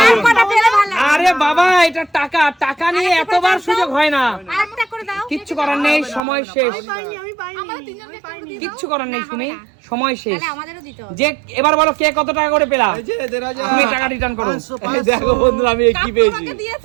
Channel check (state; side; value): drops out; left; at 6.2 s